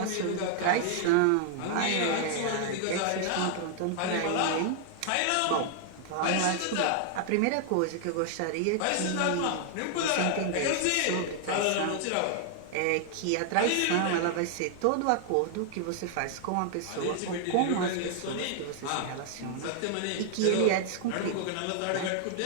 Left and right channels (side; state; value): both; different; correlation 0.00